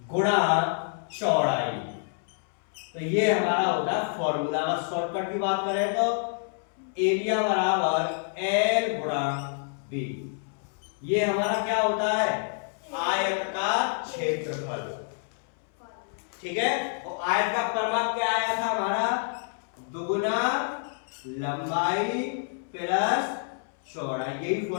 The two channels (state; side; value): silent; right; 59 dB below the other